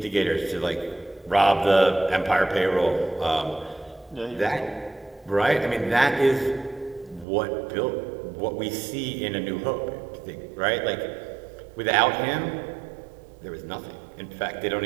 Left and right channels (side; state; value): left; drops out; at 7.2 s